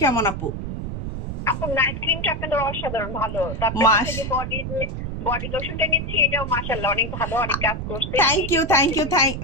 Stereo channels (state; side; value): noise; right; rumble, 5 dB below the sound